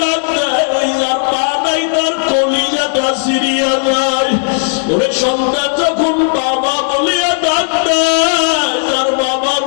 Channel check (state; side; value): silent; right; 70 dB below the other